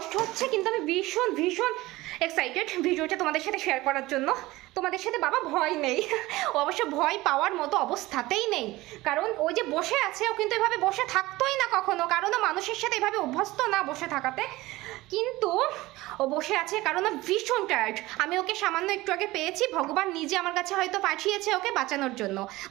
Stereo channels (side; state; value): left; quieter; 19.0 dB